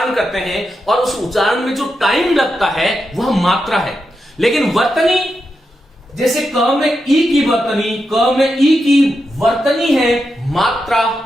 करते हैं और उस उच्चारण में जो टाइम लगता है वह मात्रा है। लेकिन वर्तनी, जैसे क में ई की वर्तनी, क में ई की वर्तनी है, मात्रा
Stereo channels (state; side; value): normal; both; correlation 0.87